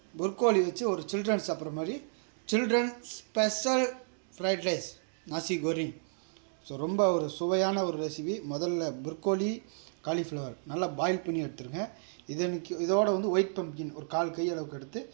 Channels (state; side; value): silent; left; digital silence